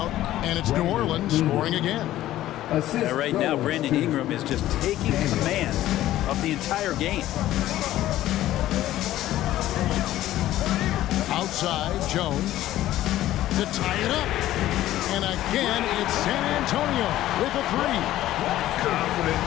and it's New Orleans scoring again. Right now, Brandon Ingram is just taking command of the entire game. Outside, Jones to tie it up. And again, it's San Antonio with a three. Confident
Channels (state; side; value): quieter; right; 14.2 dB